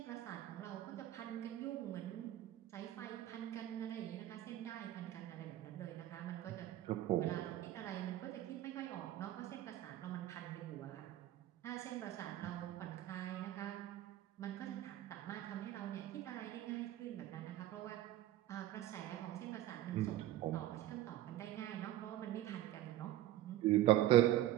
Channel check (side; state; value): left; quieter; 14.0 dB